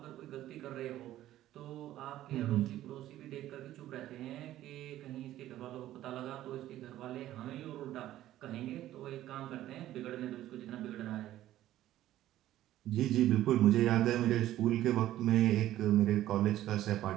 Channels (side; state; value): left; quieter; 13.7 dB